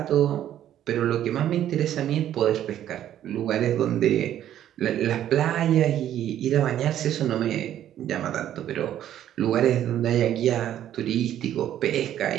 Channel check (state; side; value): quieter; left; 11.4 dB